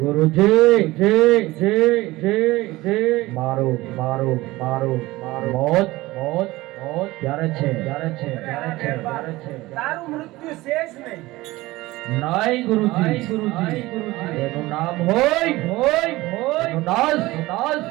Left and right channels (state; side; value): quieter; left; 19.3 dB